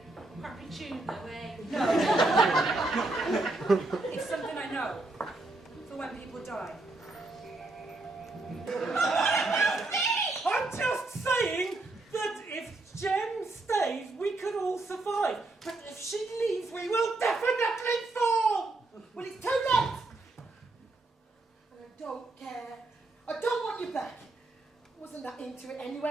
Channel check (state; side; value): quieter; left; 3.0 dB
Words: Crappy tune, no way. No. It's something I know, for when people die. I'm just saying that if Jen stays, we could all survive. But if she leaves, we will definitely fall! Well, it's too late! And I don't care. I don't want you back. I wasn't that into it